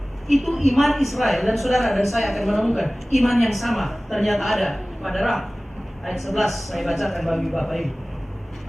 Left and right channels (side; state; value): both; normal; correlation 0.98